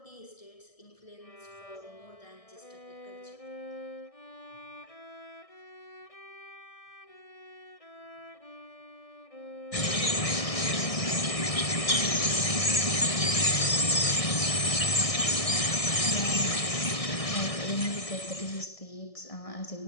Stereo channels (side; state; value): right; late; 1.6 ms